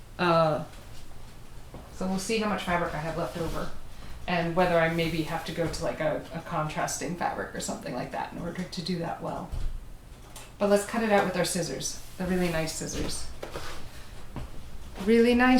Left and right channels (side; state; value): both; identical; correlation 1.00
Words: So we'll see how much fabric I have left over, and whether I maybe have to go to like a contrasting fabric or something like that in order to do that well. But let's cut it out with our scissors. The really nice scissors. Really